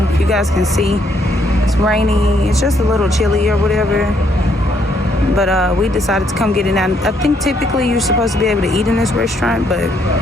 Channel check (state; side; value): normal; both; correlation 0.71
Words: if you guys can see. It's rainy. It's just a little chilly or whatever. But we decided to come get it out. I think typically you're supposed to be able to eat in this restaurant, but